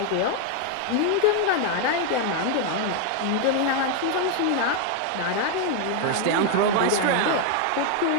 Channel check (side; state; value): both; different; correlation 0.00